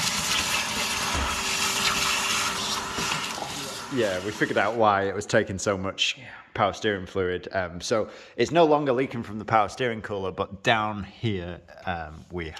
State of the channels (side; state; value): both; identical; correlation 1.00